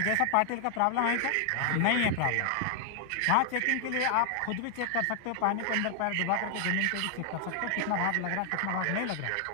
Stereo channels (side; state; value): both; different; correlation 0.00